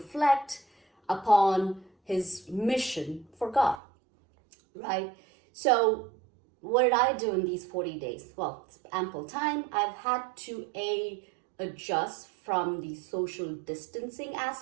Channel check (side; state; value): left; drops out; at 3.8 s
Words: upon his mission for God, right? So what did I do in these 40 days? Well, it's ample time. I've had to adjust from the social distancing